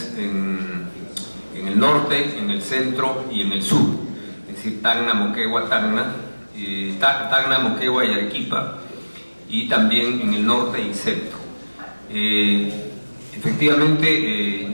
en el norte, en el centro y en el sur, es decir, Tacna, Moquegua, Tacna, Moquegua y Arequipa, y también en el norte y centro. Efectivamente,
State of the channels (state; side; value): inverted; both; correlation -1.00